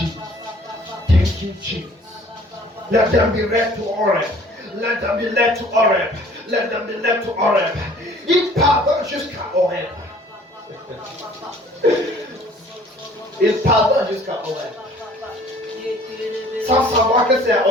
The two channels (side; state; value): both; normal; correlation 0.53